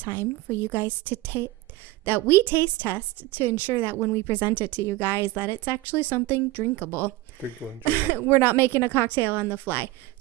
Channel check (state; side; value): quieter; left; 17.8 dB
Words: for you guys to that we taste test to ensure that when we present it to you guys that it's actually something drinkable. We're not making a cocktail on the fly.